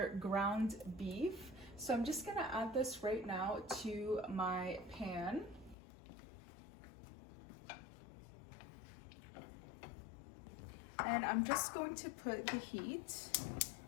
ground beef. So I'm just gonna add this right now to my pan. And I'm just going to put the heat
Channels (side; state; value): right; drops out; at 5.8 s